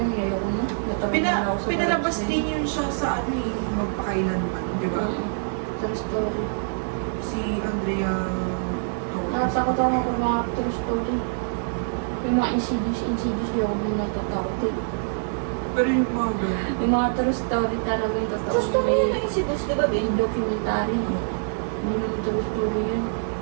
ayoko na. Natawa na ako sa Pinalabas vibes na din yun siya sa ano eh, magpakailanman, di ba? True story. Si Andrea Torres. Natatakot ako kung mga true story. Yung mga insidious, di ako muna natatakot eh. Pero yung mga ganun. Yung mga true story talaga yung totoo. Gusto mo yun yung insidious, di ba, Ben? Yung documentary. Hindi naman true story yun.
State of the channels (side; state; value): left; silent; digital silence